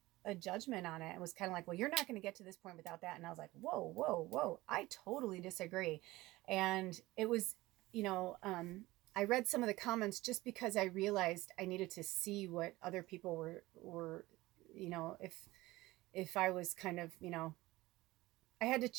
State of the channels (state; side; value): quieter; left; 19.0 dB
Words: a judgment on it. It was kind of like, well, you're not going to get to this point without that. And I was like, whoa, whoa, whoa, I totally disagree. And it was, I read some of the comments just because I realized I needed to see what other people were, if I was kind of, I had to